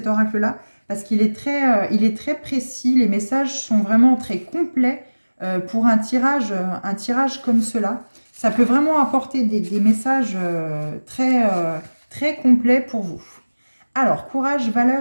oracle-là, parce qu'il est très précis, les messages sont vraiment très complets pour un tirage comme cela. Ça peut vraiment apporter des messages très complets pour vous. Alors, courage,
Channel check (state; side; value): inverted; both; correlation -1.00